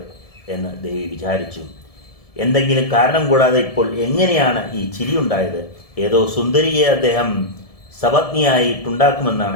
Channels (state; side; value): late; right; 1.7 ms